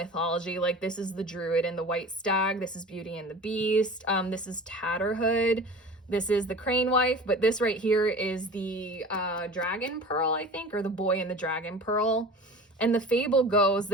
Like, this is the Druid and the White Stag. This is Beauty and the Beast. This is Tatterhood. This is the crane wife, but this right here is the dragon pearl, I think, or the boy in the dragon pearl. And the fable goes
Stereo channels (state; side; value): normal; both; correlation 0.38